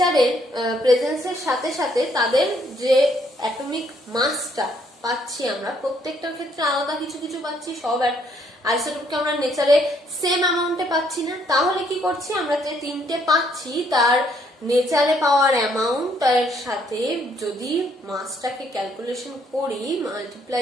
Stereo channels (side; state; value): both; normal; correlation 0.68